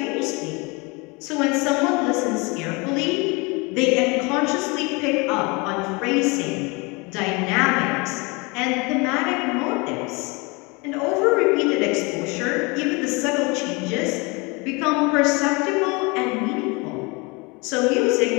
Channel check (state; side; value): quieter; right; 27.7 dB